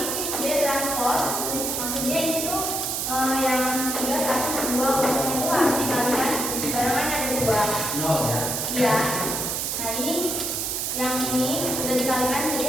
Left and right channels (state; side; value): noise; right; hiss, 1 dB below the sound